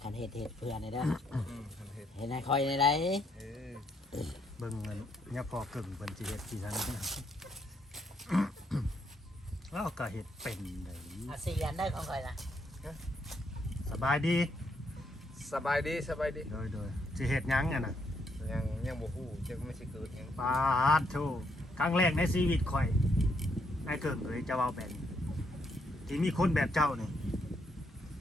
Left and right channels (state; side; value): normal; both; correlation 0.75